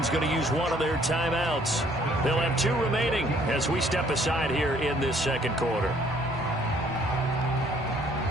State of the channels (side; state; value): both; normal; correlation 0.62